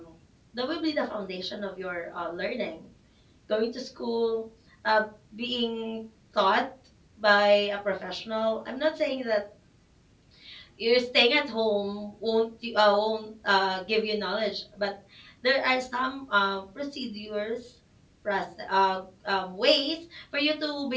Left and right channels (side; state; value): both; identical; correlation 1.00